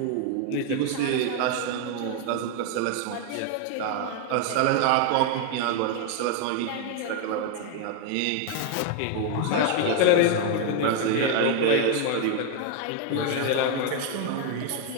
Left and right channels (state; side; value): different; both; correlation 0.00